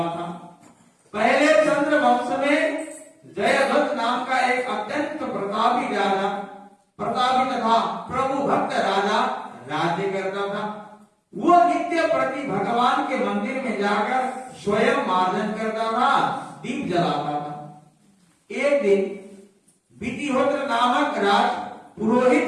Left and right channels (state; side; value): identical; both; correlation 1.00